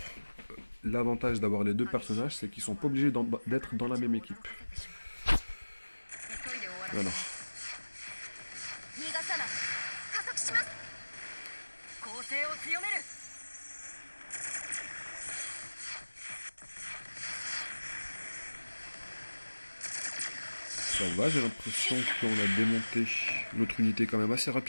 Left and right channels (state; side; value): inverted; both; correlation -1.00